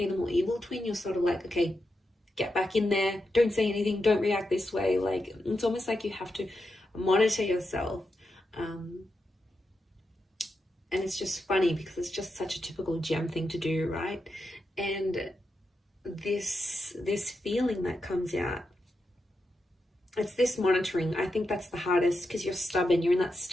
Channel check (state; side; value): normal; both; correlation 0.87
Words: the more evil twin. You're sort of like, okay, get back in there, don't say anything, don't react this way. Like, it's almost like you have to monitor yourself. And it's just funny because it's just such a typical gem thing to do, right? And this feeling that comes out, it's this monitoring. I think that's the hardest because you're stubborn. You're in that